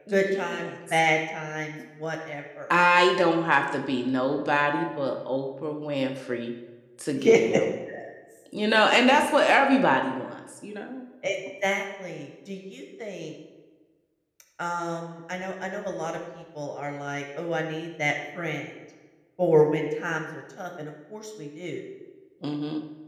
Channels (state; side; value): identical; both; correlation 1.00